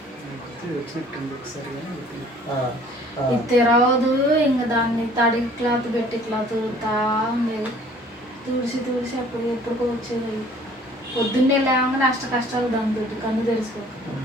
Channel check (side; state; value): both; normal; correlation 0.53